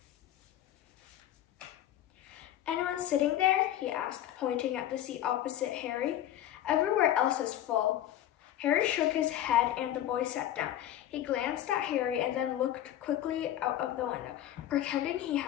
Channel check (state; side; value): quieter; right; 12.2 dB